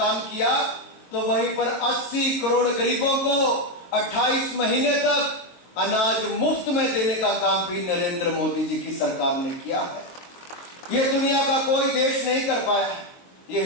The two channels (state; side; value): late; right; 23 ms